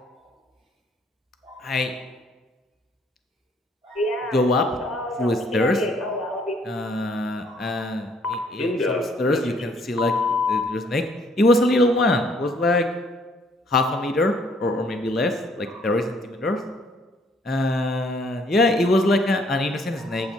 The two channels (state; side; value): normal; both; correlation 0.64